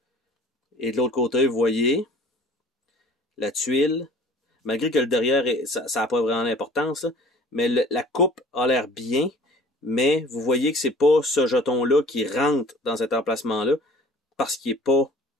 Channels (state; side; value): normal; both; correlation 0.48